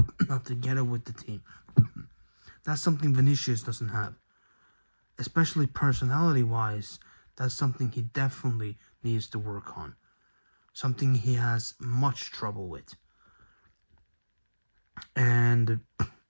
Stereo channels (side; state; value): both; inverted; correlation -1.00